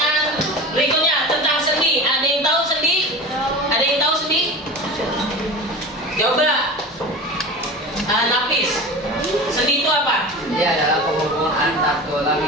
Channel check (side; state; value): both; normal; correlation 0.31